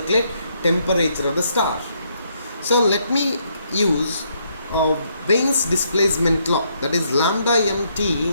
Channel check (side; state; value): both; inverted; correlation -0.73